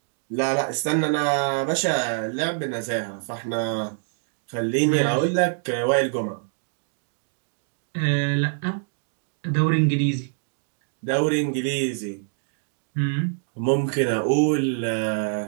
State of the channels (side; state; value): left; silent; digital silence